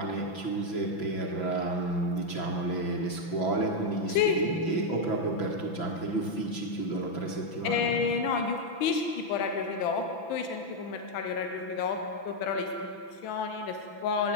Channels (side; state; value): right; late; 6.0 ms